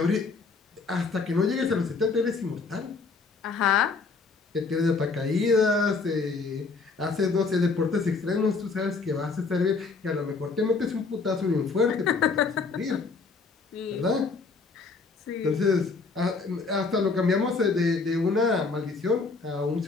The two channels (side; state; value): right; quieter; 4.3 dB